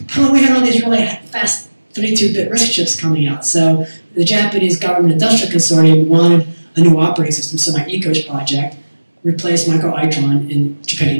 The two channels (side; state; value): both; inverted; correlation -1.00